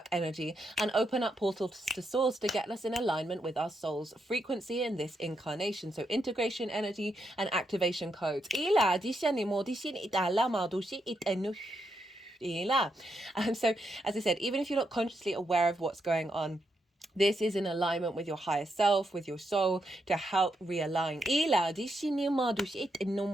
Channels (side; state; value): both; normal; correlation 0.81